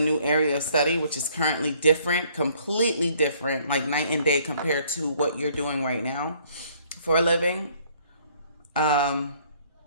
new area of study, which is currently different, completely different, like night and day compared to what you're doing right now for a living. Um,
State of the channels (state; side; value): inverted; both; correlation -0.61